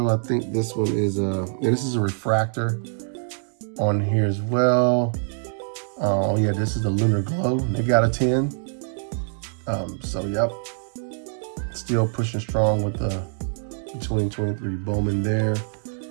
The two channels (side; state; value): left; silent; digital silence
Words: I think this one is this is a refractor on here as well. Oh yeah, this is the Lunar Glow. They got a 10. So yep, still pushing strong with the 2023 Bowman there.